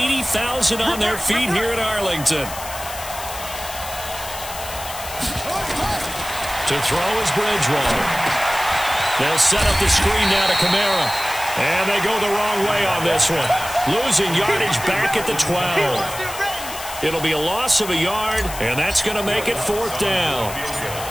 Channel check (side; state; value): left; noise; hiss, 11 dB below the sound